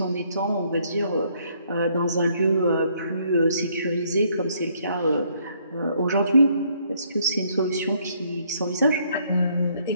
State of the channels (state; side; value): inverted; both; correlation -0.68